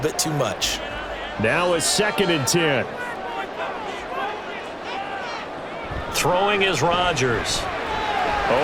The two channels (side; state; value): both; identical; correlation 1.00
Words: too much. Now it's 2nd and 10. Throwing is Rodgers.